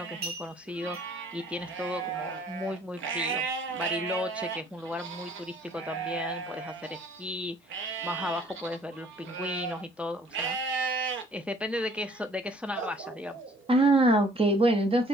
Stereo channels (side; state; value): both; normal; correlation 0.57